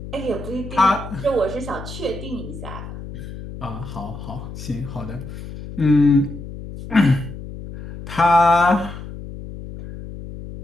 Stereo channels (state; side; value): noise; left; hum, 11 dB below the sound